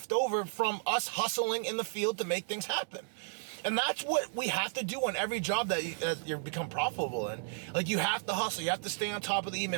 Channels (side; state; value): left; silent; digital silence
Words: over from us hustling in the field to make things happen. And that's what we have to do on every job that you become profitable in. Like, you have to hustle. You have to stay on top of the